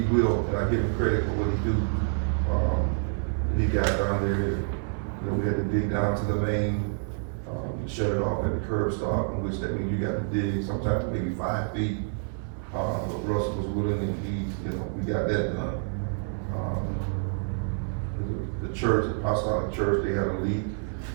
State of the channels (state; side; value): silent; left; 60 dB below the other